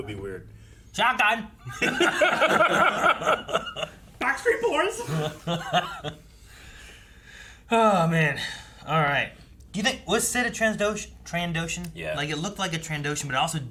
be weird. Shotgun. Backstreet Boys. Oh man. All right. Do you think was Cid a Trandoshan? Yeah. Like it looked like a Trandoshan, but it also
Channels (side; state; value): both; identical; correlation 1.00